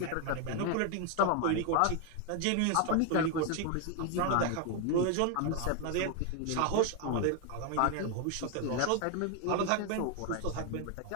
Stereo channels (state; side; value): different; both; correlation 0.01